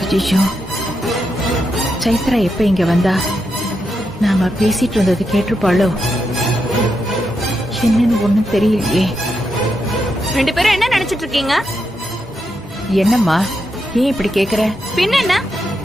ஐயோ, சைத்ரா எப்ப இங்க வந்தா? நாம பேசிட்டு இருந்தது கேட்டிருப்பாளோ? என்னன்னு ஒண்ணும் தெரியலையே. ரெண்டு பேரும் என்ன நினைச்சிட்டு இருக்கீங்க? என்னம்மா, ஏன் இப்படி கேக்குற? பின்ன என்ன,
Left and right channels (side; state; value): both; normal; correlation 0.84